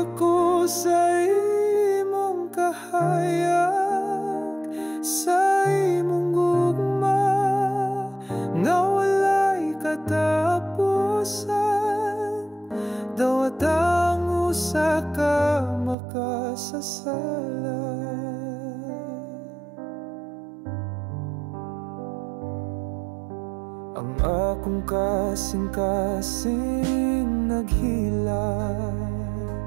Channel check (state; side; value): drops out; left; at 16.0 s